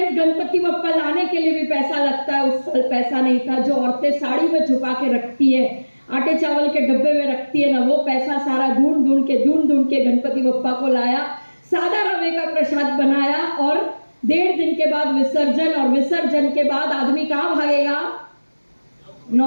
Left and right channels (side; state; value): both; inverted; correlation -1.00